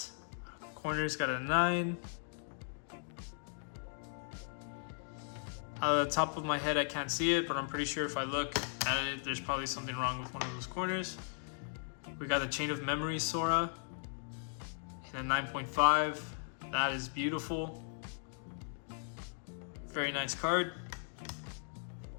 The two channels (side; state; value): right; silent; digital silence